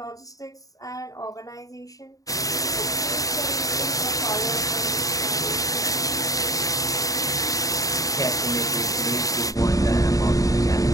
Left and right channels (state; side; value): late; right; 0.17 ms